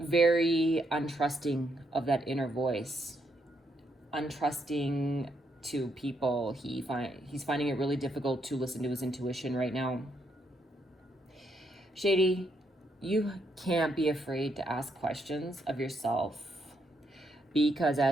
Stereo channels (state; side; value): normal; both; correlation 0.77